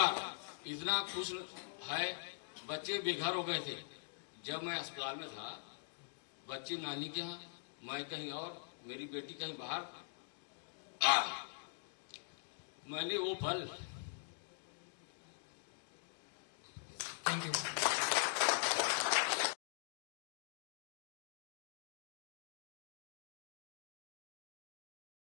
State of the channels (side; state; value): right; silent; digital silence